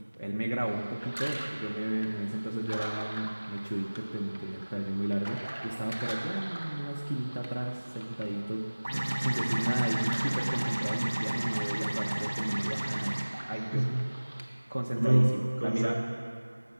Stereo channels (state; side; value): inverted; both; correlation -1.00